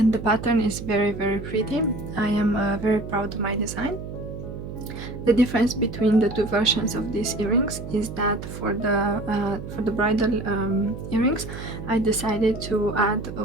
the pattern is very pretty. I am very proud of my design. The difference between the two versions of these earrings is that for the bridal earrings I decided to add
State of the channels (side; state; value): right; noise; hum, 9 dB below the sound